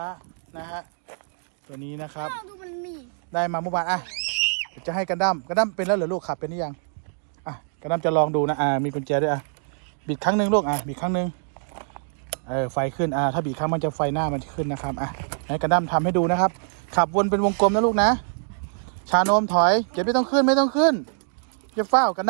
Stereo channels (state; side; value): silent; left; digital silence